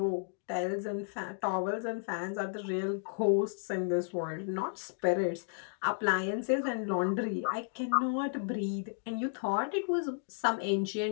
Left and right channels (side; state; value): right; silent; digital silence